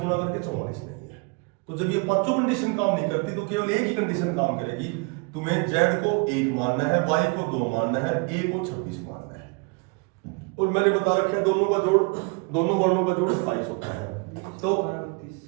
करके 44 नहीं है। तो जब ये पांचों कंडीशन काम नहीं करती, तो केवल एक ही कंडीशन काम करेगी, तुम्हें जेड को 1 मानना है, वाई को 2 मानना है, ए को 26 मानना है। और मैंने बता रखा है दोनों का जोड़, दोनों वर्णों का जोड़ 27 होता है। तो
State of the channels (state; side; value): quieter; left; 31.3 dB